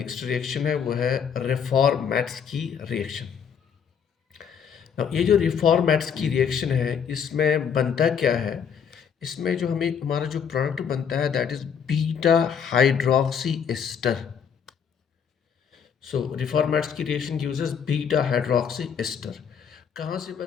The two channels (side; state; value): right; quieter; 7.3 dB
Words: रिएक्शन है वो है रिफॉर्मेट्स की रिएक्शन। ये जो रिफॉर्मेट्स की रिएक्शन है इसमें बनता क्या है, इसमें जो हमारा जो प्रोडक्ट बनता है that is beta hydroxy ester. So रिफॉर्मेट्स की reaction uses beta hydroxy ester. कहाँ से